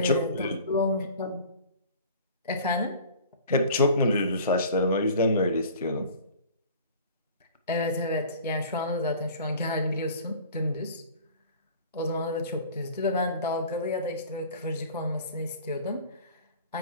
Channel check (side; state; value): both; inverted; correlation -0.44